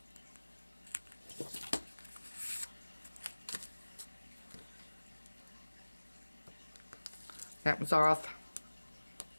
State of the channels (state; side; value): inverted; both; correlation -1.00